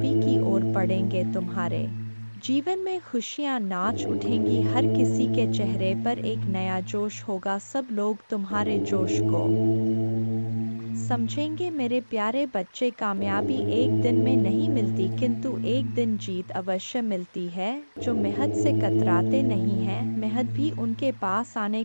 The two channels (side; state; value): both; inverted; correlation -1.00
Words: की ओर बढ़ेंगे। तुम्हारे जीवन में खुशियां नाच उठेंगी। हर किसी के चेहरे पर एक नया जोश होगा। सब लोग तुम्हारे जोश को समझेंगे। मेरे प्यारे बच्चे, कामयाबी एक दिन में नहीं मिलती, किंतु एक दिन जीत अवश्य मिलती है। जो मेहनत से कतराते नहीं हैं, मेहनत भी उनके पास आने